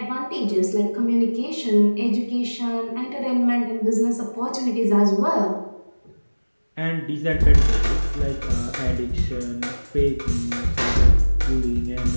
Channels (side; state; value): both; inverted; correlation -1.00